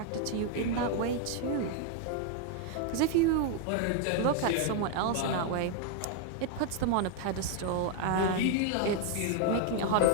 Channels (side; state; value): both; different; correlation 0.01